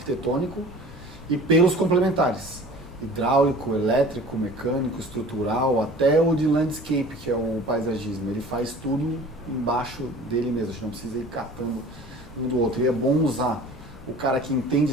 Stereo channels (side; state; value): both; normal; correlation 0.44